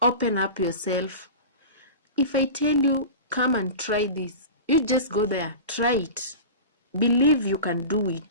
open up yourself. If I tell you, come and try this, you just go there, try it. Believe you can do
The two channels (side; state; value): both; inverted; correlation -0.31